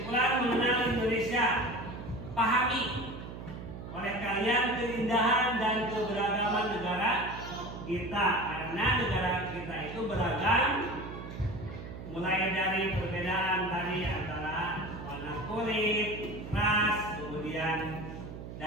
mengenal Indonesia. Pahami oleh kalian keindahan dan keberagaman negara kita, karena negara kita itu beragam, mulai dari perbedaan tadi antara warna kulit, ras, kemudian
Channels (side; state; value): right; noise; hum, 10 dB below the sound